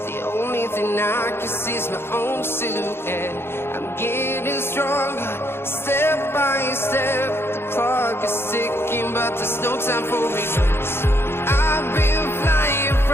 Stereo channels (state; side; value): late; right; 0.11 ms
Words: The only thing I can see is my own silhouette. I'm getting stronger, step by step. The clock is ticking, but there's no time for regrets. I've been flying